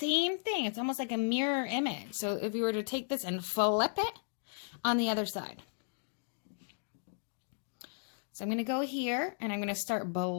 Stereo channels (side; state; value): right; silent; digital silence